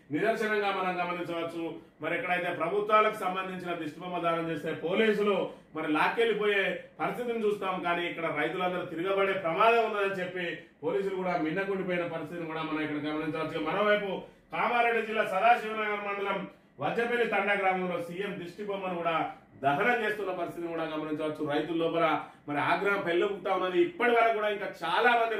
నిదర్శనంగా మనం గమనించవచ్చు. మరి ఎక్కడైతే ప్రభుత్వాలకు సంబంధించిన దిష్టిబొమ్మ దానం చేస్తే పోలీసులు మరి లాక్కెళ్ళిపోయే పరిస్థితిని చూస్తాం. కానీ ఇక్కడ రైతులందరూ తిరగబడే ప్రమాదం ఉన్నదని చెప్పి పోలీసులు కూడా మిన్నకుండిపోయిన పరిస్థితిని కూడా మనం ఇక్కడ గమనించవచ్చు. మరోవైపు కామారెడ్డి జిల్లా సదాశివనగర్ మండలం వజ్రపల్లి తండా గ్రామంలో సీఎం దిష్టి బొమ్మను కూడా దహనం చేస్తున్న పరిస్థితిని కూడా గమనించవచ్చు. రైతుల లోపల మరి ఆగ్రహం పెళ్ళుపుతా ఉన్నది. ఇప్పటి వరకు కూడా ఇంకా చాలా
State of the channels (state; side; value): identical; both; correlation 1.00